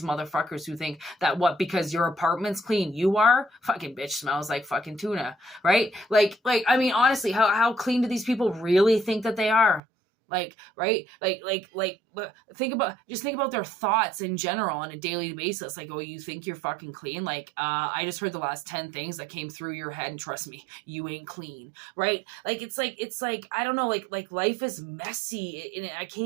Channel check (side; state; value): left; drops out; at 9.8 s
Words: motherfuckers who think that what, because your apartment's clean, you are? Fucking bitch smells like fucking tuna, right? Like, I mean, honestly, how clean do these people really think that they are? Like, right? Think about their thoughts in general on a daily basis. Like, oh, you think you're fucking clean? Like, I just heard the last 10 things that came through your head, and trust me, you ain't clean, right? Like, it's like, I don't know, like life is messy, and I